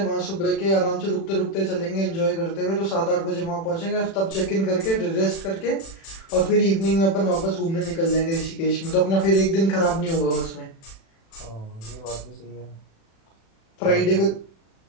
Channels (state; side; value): late; right; 36 ms